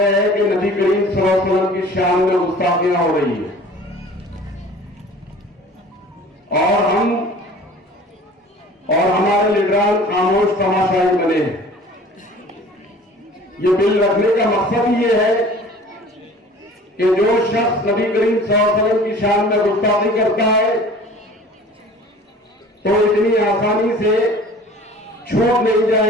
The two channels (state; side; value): normal; both; correlation 0.46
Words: हैं कि नबी करीम सल्लल्लाहु अलैहि वसल्लम की शान में गुस्ताखियां हो रही है और हमारे लीडरान खामोश तमाशाई बने हैं। ये बिल रखने का मकसद ये है कि जो शख्स नबी करीम सल्लल्लाहु अलैहि वसल्लम की शान में गुस्ताखी करता है तो इतनी आसानी से छूट नहीं